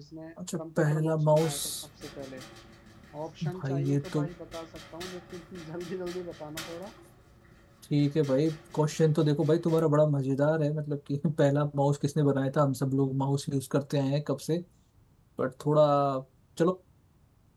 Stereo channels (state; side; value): identical; both; correlation 1.00